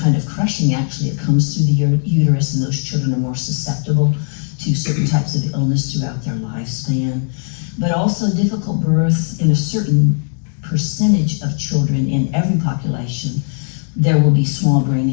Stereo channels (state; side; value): silent; right; 61 dB below the other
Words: of crushing actually that comes through the uterus, and those children are more susceptible to certain types of illness throughout their lifespan. But also difficult birth in a certain percentage of children in every population, there will be small brain